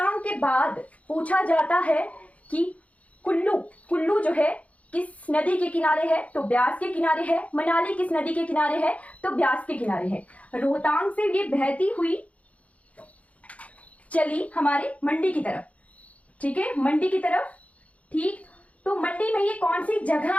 के बाद पूछा जाता है कि कुल्लू जो है किस नदी के किनारे है? तो ब्यास के किनारे है। मनाली किस नदी के किनारे है? तो ब्यास के किनारे है। रोहतांग से ये बहती हुई चली हमारे मंडी की तरफ। ठीक है, मंडी की तरफ। ठीक, तो मंडी में ये कौन सी जगह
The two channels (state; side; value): late; right; 0.066 ms